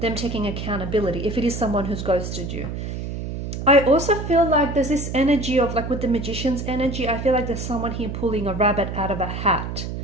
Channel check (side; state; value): right; noise; hum, 6 dB below the sound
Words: them taking accountability if it is someone who's ghosted you. I also feel like there's this energy of, like with the magician's energy, I feel like there's someone here pulling a rabbit out of a hat,